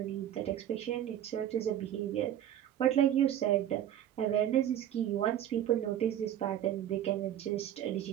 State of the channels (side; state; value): left; quieter; 11.1 dB